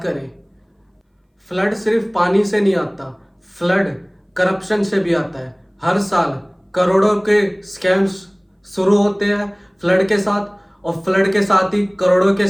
करे। फ्लड सिर्फ पानी से नहीं आता, फ्लड करप्शन से भी आता है। हर साल करोड़ों के स्कैम्स शुरू होते हैं फ्लड के साथ, और फ्लड के साथ ही करोड़ों के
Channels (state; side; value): identical; both; correlation 1.00